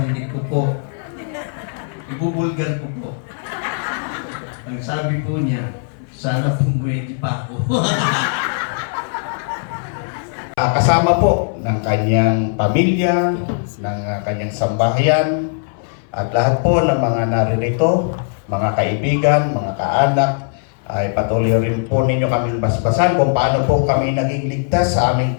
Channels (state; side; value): silent; right; 61 dB below the other